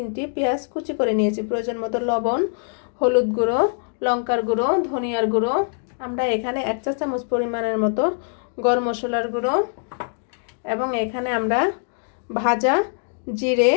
পেঁয়াজ কুচি করে নিয়েছি। প্রয়োজন মতো লবণ, হলুদ গুঁড়ো, লঙ্কার গুঁড়ো, ধনিয়ার গুঁড়ো। আমরা এখানে 1 চা চামচ পরিমাণের মতো গরম মশলার গুঁড়ো এবং এখানে আমরা ভাজা জিরে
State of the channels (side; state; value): right; silent; 62 dB below the other